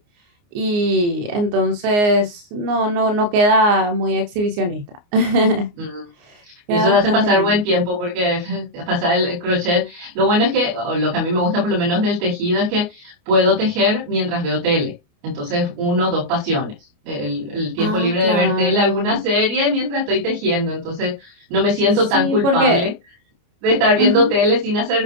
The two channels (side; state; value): left; late; 29 ms